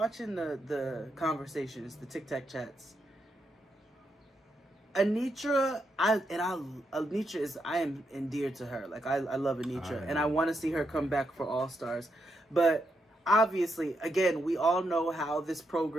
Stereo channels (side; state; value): both; normal; correlation 0.81